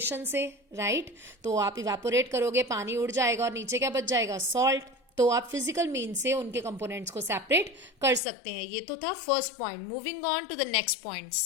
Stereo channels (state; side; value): drops out; right; at 8.2 s